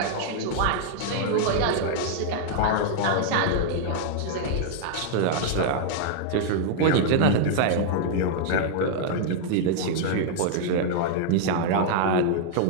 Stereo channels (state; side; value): different; both; correlation -0.01